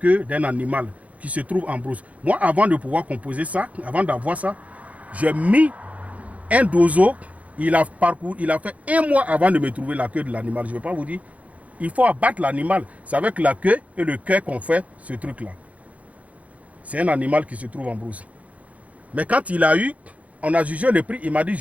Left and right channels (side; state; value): left; late; 0.068 ms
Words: d'un animal qui se trouve en brousse. Moi, avant de pouvoir composer ça, avant d'avoir ça, j'ai mis un dozo. Il a fait 1 mois avant de me trouver la queue de l'animal. Je ne vais pas vous dire. Il faut abattre l'animal. C'est avec la queue et le cœur qu'on fait ce truc-là. C'est un animal qui se trouve en brousse. Mais quand il a eu, on a jugé le prix. Il m'a dit,